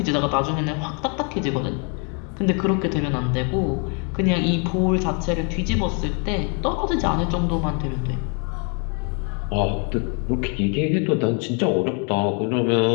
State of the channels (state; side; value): quieter; right; 37.8 dB